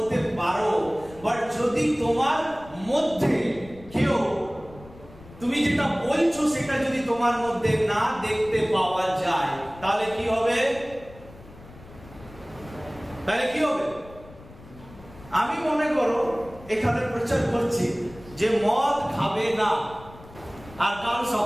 পারো, বাট যদি তোমার মধ্যে কেউ তুমি যেটা বলছো সেটা যদি তোমার মধ্যে না দেখতে পাওয়া যায়, তাহলে কি হবে? আমি মনে করো এখানে প্রচার করছি যে মদ খাবে না, আর কাল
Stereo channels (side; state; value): left; noise; rumble, 20 dB below the sound